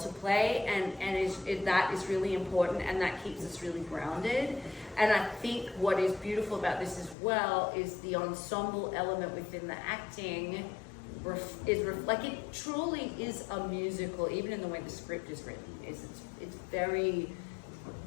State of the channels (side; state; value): right; drops out; at 7.2 s